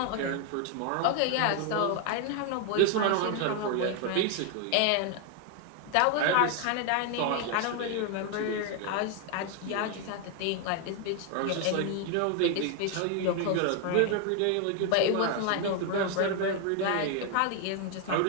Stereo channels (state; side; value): different; both; correlation 0.01